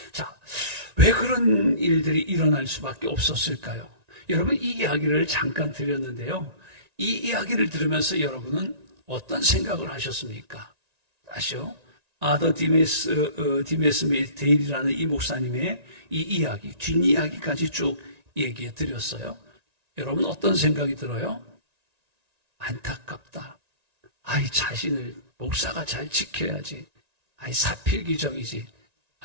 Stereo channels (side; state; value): left; late; 1.9 ms